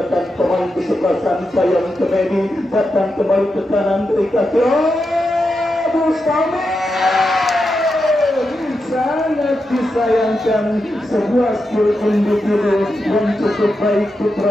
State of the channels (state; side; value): normal; both; correlation 0.87